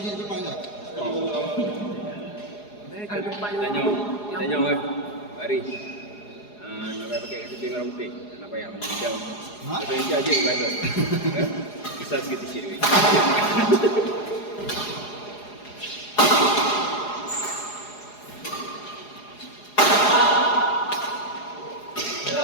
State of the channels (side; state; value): right; late; 4.8 ms